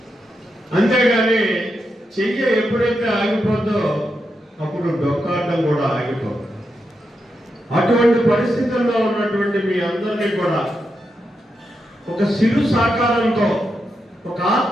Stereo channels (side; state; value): both; normal; correlation 0.85